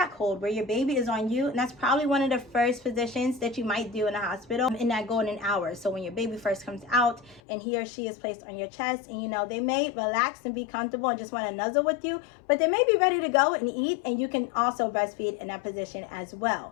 hold where your baby is on you, and that's probably one of the first positions that you might do in a hospital in that golden hour. So when your baby first comes out and he or she is placed on your chest, and you know, they may relax and be comfortable and just want to nuzzle with you, but they may be ready to go and eat, and you can also breastfeed in that position as well.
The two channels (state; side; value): drops out; right; at 7.4 s